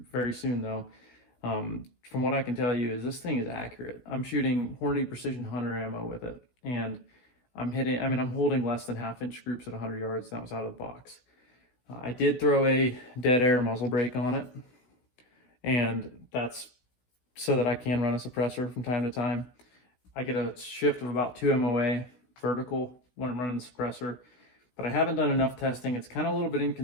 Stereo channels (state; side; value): late; right; 16 ms